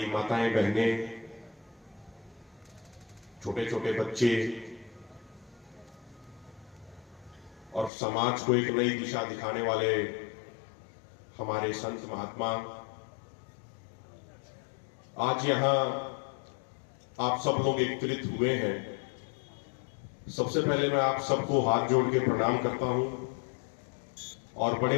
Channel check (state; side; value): drops out; right; at 7.9 s